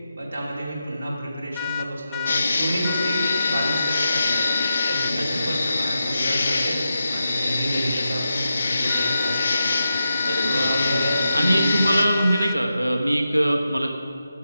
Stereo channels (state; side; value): inverted; both; correlation -0.88